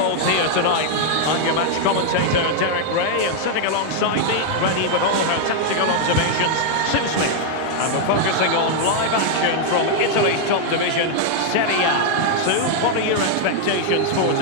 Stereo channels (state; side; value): different; both; correlation 0.00